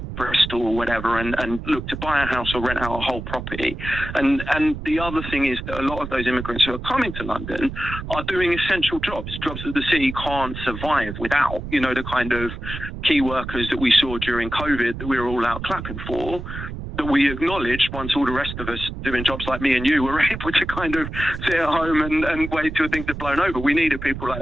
Bristol or whatever and look to buy a house or rent out a whole property. And the other thing is that a lot of those immigrants who are coming to London are doing essential jobs that the city can't survive without, you know, the kind of key workers that we saw during COVID that we were all out clapping for, that we acknowledged once all the rest of us doing jobs like me and you were able to kind of sit at home and wait till things had blown over. We needed people like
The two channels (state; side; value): noise; right; rumble, 8 dB below the sound